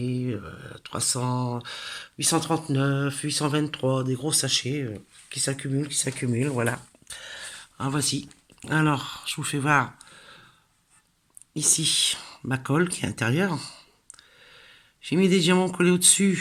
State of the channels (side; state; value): both; identical; correlation 1.00